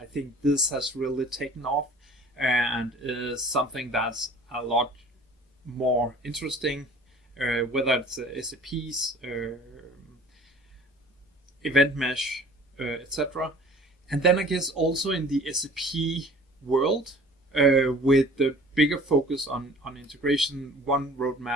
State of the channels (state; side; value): normal; both; correlation 0.47